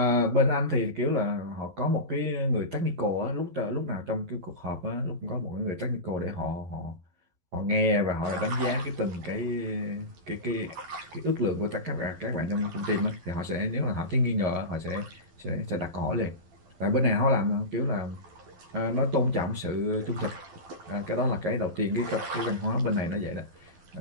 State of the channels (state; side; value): late; left; 12 ms